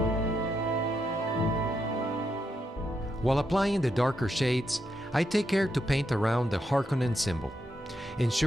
While applying the darker shades, I take care to paint around the Harkonnen symbol,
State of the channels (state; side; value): normal; both; correlation 0.82